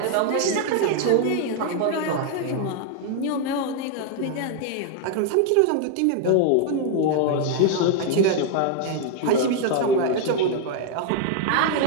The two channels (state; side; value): different; both; correlation 0.00